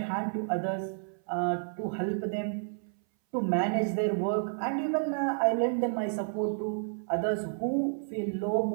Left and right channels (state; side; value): silent; left; 57 dB below the other